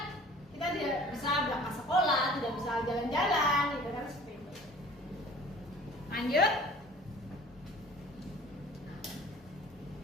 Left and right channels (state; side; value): normal; both; correlation 0.47